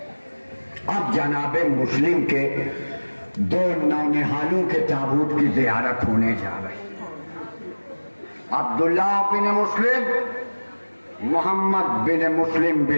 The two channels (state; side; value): inverted; both; correlation -1.00